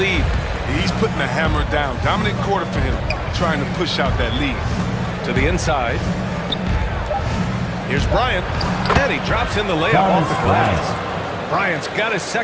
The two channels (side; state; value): both; identical; correlation 1.00